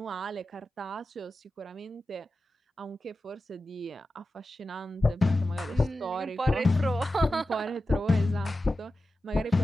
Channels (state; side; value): normal; both; correlation 0.93